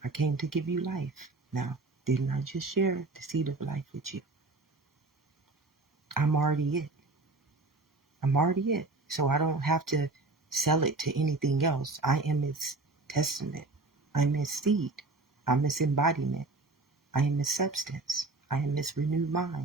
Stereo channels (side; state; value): left; quieter; 3.4 dB